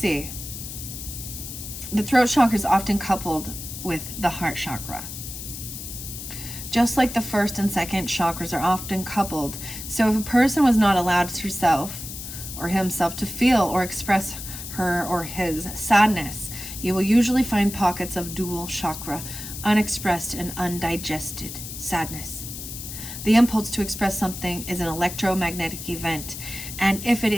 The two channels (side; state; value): left; noise; hiss, 9 dB below the sound